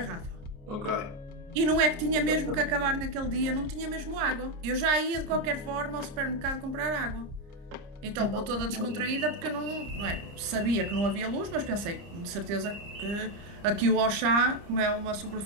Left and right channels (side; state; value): left; late; 29 ms